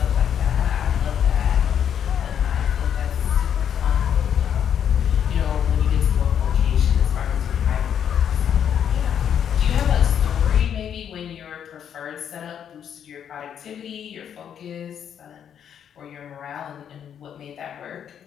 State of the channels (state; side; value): quieter; right; 8.8 dB